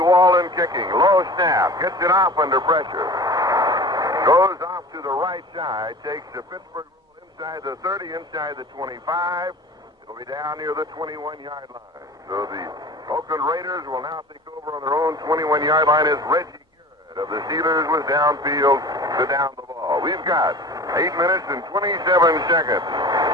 kicking. Low snap. Gets it off under pressure. Goes off to the right side. Takes the Pittsburgh rule inside the 30, inside the 25. It'll be down near the 21-yard line. So the Oakland Raiders will now take over on their own 21-yard line as Reggie Garrett of the Steelers was downfield to down the ball. We've got 8 minutes and 27 seconds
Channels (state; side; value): normal; both; correlation 0.38